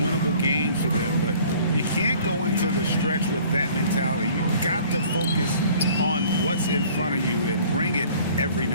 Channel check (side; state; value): both; inverted; correlation -0.52